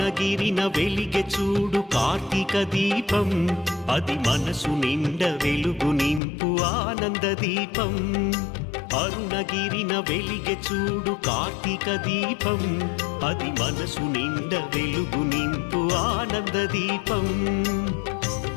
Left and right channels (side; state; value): right; drops out; at 6.2 s